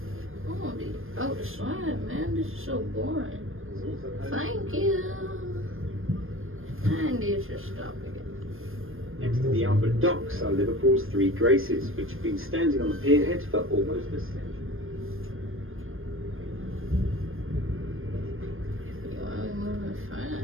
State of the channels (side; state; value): left; late; 0.60 ms